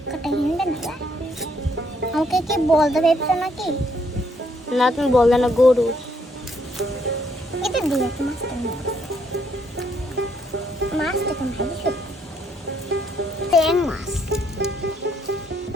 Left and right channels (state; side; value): normal; both; correlation 0.71